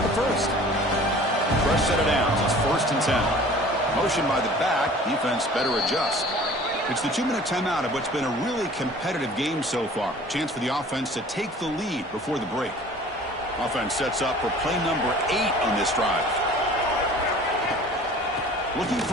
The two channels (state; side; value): normal; both; correlation 0.47